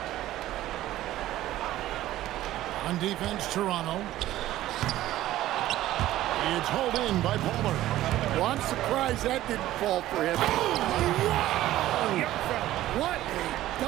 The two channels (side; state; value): left; quieter; 14.5 dB